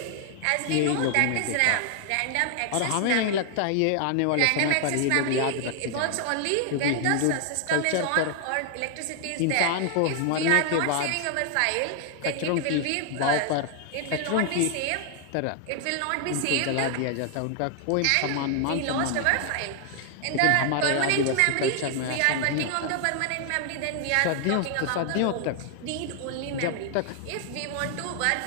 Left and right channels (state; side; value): different; both; correlation 0.00